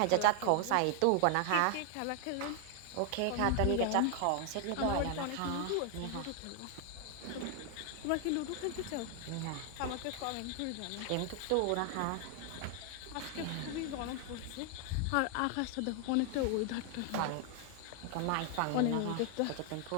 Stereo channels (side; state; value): both; different; correlation 0.00